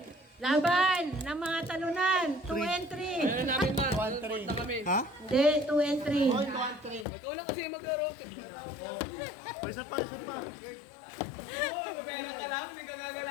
Laban ng mga talunan. 2 and 3. Ano namin man, punta kami. Ha? Hindi, 2 and 3. Ikaw lang kasi maglaro. Reset pa. Pera ka lang, hindi ka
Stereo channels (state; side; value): drops out; right; at 7.1 s